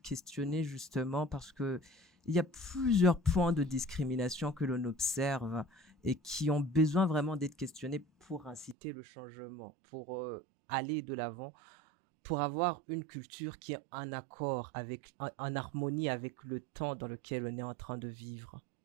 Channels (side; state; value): left; drops out; at 8.8 s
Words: questionnée justement parce que il y a plusieurs points de discrimination que l'on observe et qui ont besoin vraiment d'être questionnés pour inciter le changement, pour aller de l'avant, pour avoir une culture qui est en accord avec, en harmonie avec le temps dans lequel on est en train de vivre.